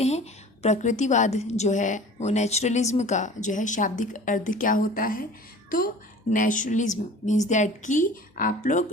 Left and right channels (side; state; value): both; normal; correlation 0.43